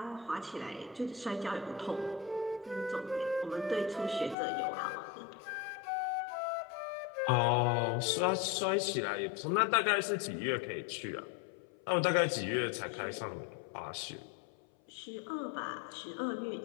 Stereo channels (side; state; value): right; drops out; at 4.4 s